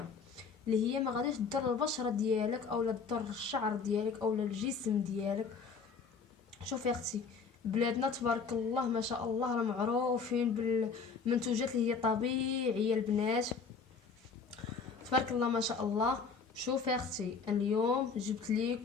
اللي هي ما غاديش تضر البشره ديالك او لا تضر الشعر ديالك او لا الجسم ديالك. شوفي اختي، بلادنا تبارك الله ما شاء الله راه معروفين بالمنتوجات اللي هي طبيعيه البنات، تبارك الله ما شاء الله. شوفي اختي، اليوم جبت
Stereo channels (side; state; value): right; quieter; 5.3 dB